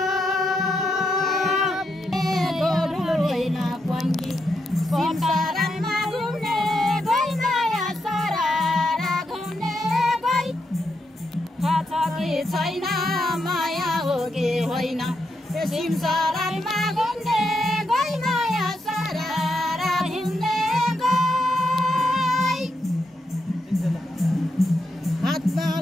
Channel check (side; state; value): both; normal; correlation 0.82